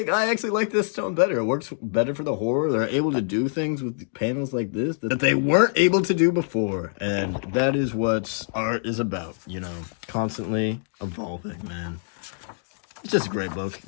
I actually like this tone better. It works better for the horror. They're able to do things with panels like this that they weren't able to do before. And that is what art is about, you know, constantly evolving, man. It's just a great book.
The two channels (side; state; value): right; silent; digital silence